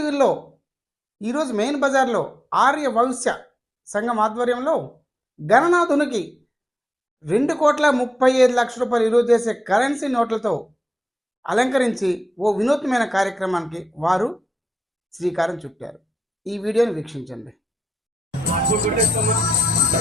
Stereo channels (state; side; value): normal; both; correlation 0.88